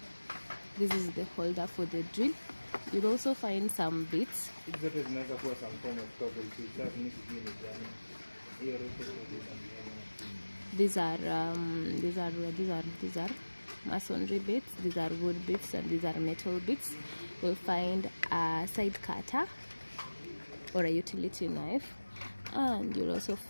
This is the holder for the drill. You'll also find some bits. These are masonry bits. These are wood bits, and these are metal bits. You'll find a side cutter or a utility knife, and you'll also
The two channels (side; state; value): both; inverted; correlation -1.00